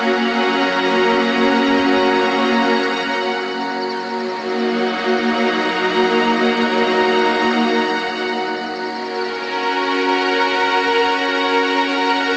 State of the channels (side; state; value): both; identical; correlation 1.00